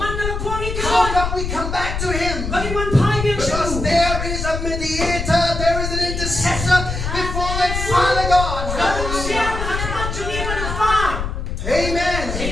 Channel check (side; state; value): left; noise; rumble, 4 dB below the sound